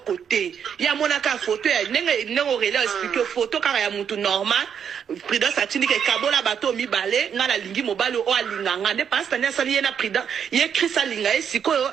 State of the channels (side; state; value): left; quieter; 7.8 dB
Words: côté. Ya monaka photo ya nenge Aurélie expliquer photo kaka ya mutu normal. Prudence a tina ke kabola bato mibale ngana lingi mobalo o alinga ngande Pastani asali ye na Prudence. Ye Chris alinga ye sikoyo